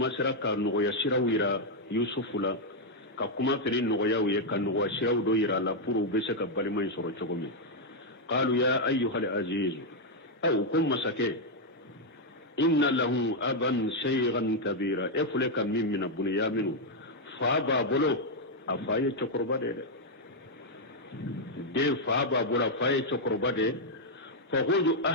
sera ka nɔgɔya siraw yira yusufu la ka kuma fɛnɛ nɔgɔyaw ye ka nɔgɔya siraw dɔ yira la pour u bɛ se ka balima in sɔrɔ cogo min qalu ya ayyuhal aziz aw ko masakɛ inna lahu aban shaykhan kabira e fule ka min mina bunyaminu fa b'a bolo a fa ye cɛkɔrɔba de den fa b'a bolo a fa ye cɛkɔrɔba de fa khudhu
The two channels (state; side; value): normal; both; correlation -0.01